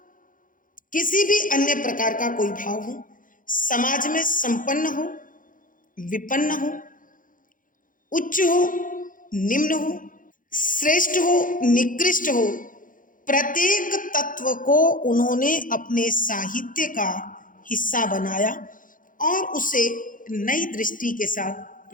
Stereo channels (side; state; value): right; late; 0.39 ms